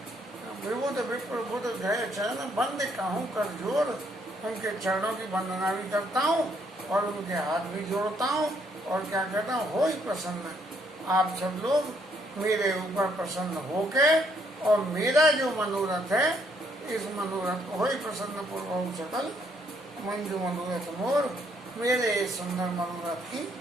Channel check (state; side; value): normal; both; correlation 0.70